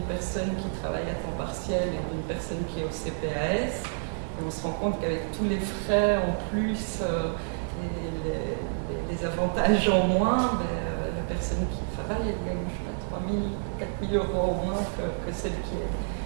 personne qui travaille à temps partiel et d'une personne qui est au CPAS. Et on se rend compte qu'avec tous les frais en plus et les avantages en moins, ben, la personne qui travaille, elle gagne 3 000, 4 000 euros au moins que celle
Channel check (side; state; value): left; silent; digital silence